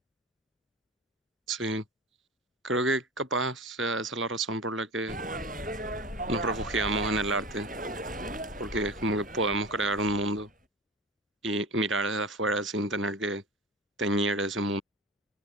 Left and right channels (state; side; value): normal; both; correlation 0.32